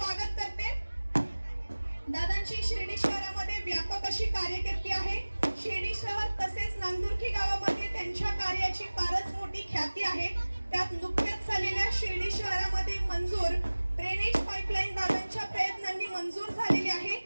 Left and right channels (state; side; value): inverted; both; correlation -1.00